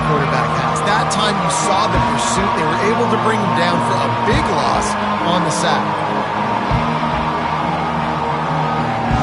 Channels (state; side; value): identical; both; correlation 1.00